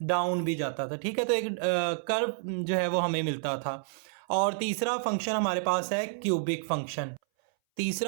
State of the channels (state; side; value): silent; left; 58 dB below the other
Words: डाउन भी जाता था, ठीक है। तो एक कर्व जो है वो हमें मिलता था। और तीसरा फंक्शन हमारे पास है क्यूबिक फंक्शन।